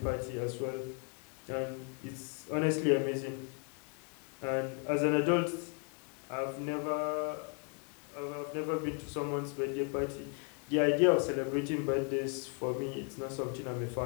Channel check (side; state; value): right; quieter; 38.9 dB